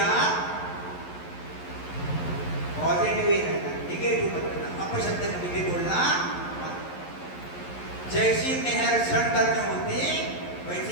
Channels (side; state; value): right; late; 11 ms